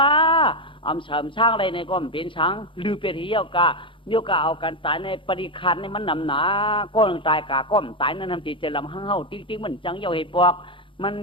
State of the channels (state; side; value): late; right; 0.25 ms